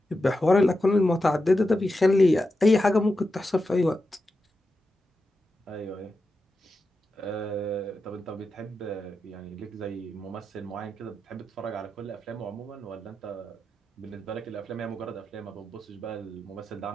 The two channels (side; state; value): both; normal; correlation 0.89